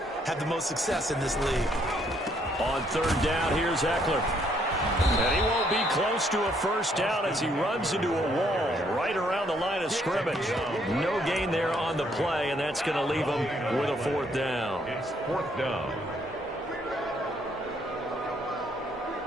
have the most success in this league. On 3rd down, here's Eckler. And he won't be close to a 1st down as he runs into a wall right around the line of scrimmage. No gain there on the play, and that's going to leave him with a 4th down. It's 4th down.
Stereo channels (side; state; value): both; normal; correlation 0.69